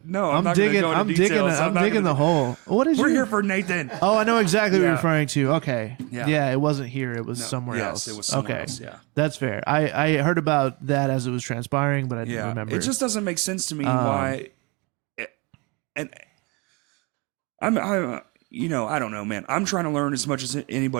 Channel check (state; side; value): quieter; left; 28.8 dB